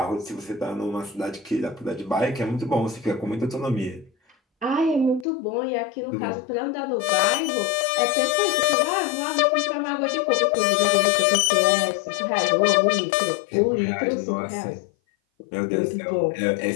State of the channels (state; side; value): drops out; right; at 5.2 s